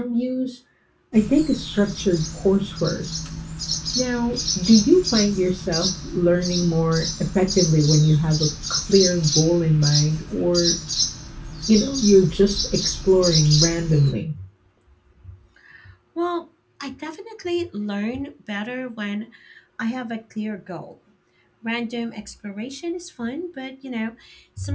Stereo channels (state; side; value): identical; both; correlation 1.00